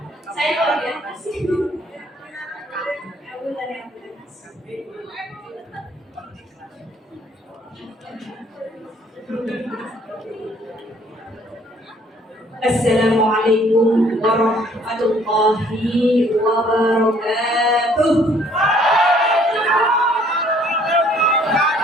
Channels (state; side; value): normal; both; correlation 0.61